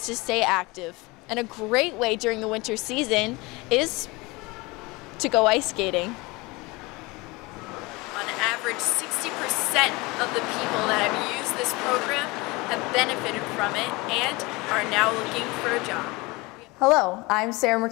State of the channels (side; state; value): right; quieter; 24.0 dB